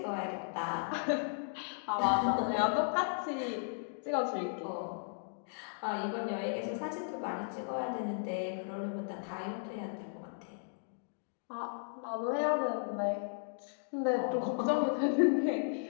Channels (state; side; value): silent; right; digital silence